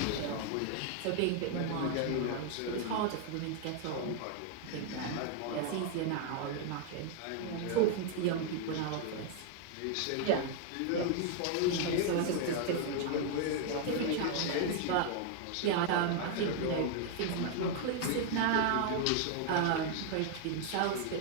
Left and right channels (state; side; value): different; both; correlation 0.00